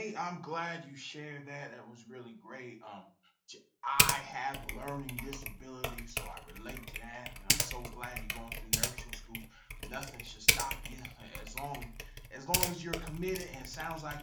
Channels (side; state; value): both; identical; correlation 1.00